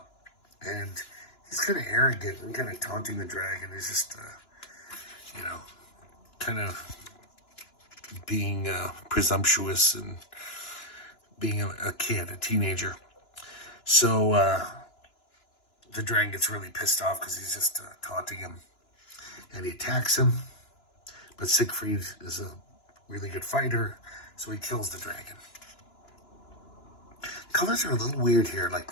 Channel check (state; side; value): late; right; 2.9 ms